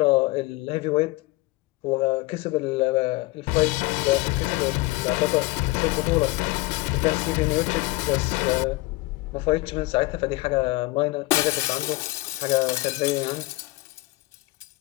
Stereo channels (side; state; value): right; quieter; 20.9 dB